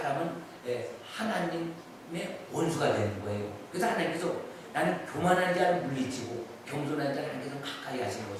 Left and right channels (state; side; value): identical; both; correlation 1.00